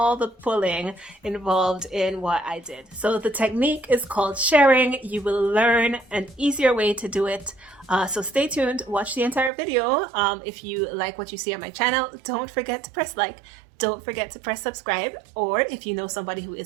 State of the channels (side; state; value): left; drops out; at 9.5 s